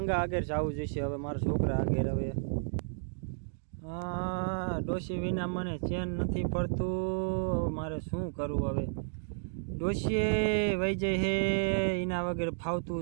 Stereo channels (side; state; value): left; silent; digital silence